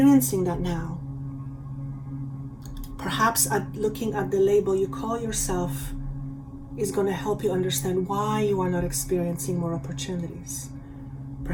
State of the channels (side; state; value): both; identical; correlation 1.00